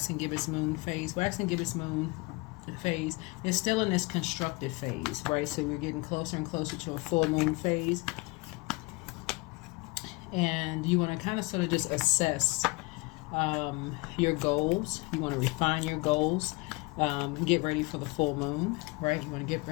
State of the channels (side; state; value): right; quieter; 25.2 dB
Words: gibbous moon phase. Waxing gibbous moon phase is still in this constructed phase, right? So we're getting closer and closer to a full moon phase, and you want to kind of sort of just assess your goals. You want to refine your goals, get ready for the full moon, right? You want to get